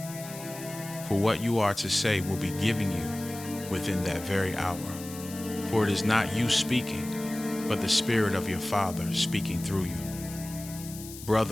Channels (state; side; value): noise; left; hiss, 14 dB below the sound